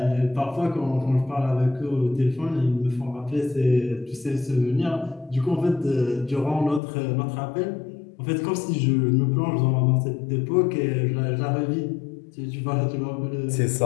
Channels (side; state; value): right; drops out; at 6.8 s